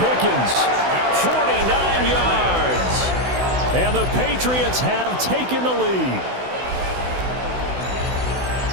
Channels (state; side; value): late; left; 16 ms